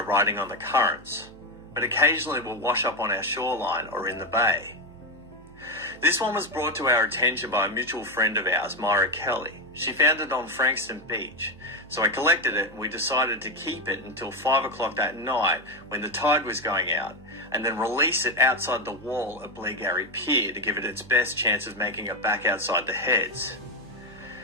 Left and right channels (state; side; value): noise; right; hum, 22 dB below the sound